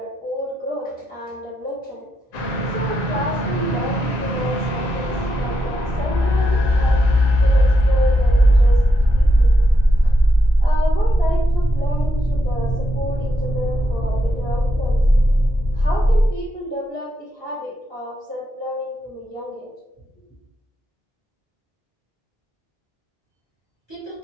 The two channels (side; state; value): both; normal; correlation 0.83